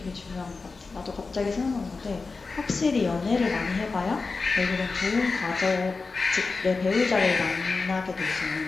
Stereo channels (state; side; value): quieter; right; 4.2 dB